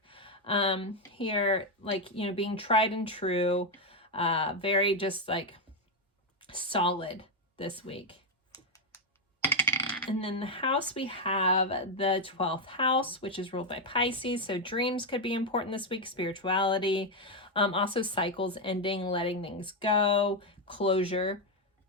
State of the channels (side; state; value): both; normal; correlation 0.05